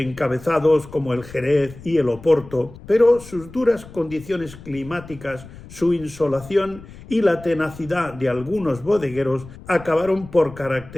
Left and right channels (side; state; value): left; noise; rumble, 18 dB below the sound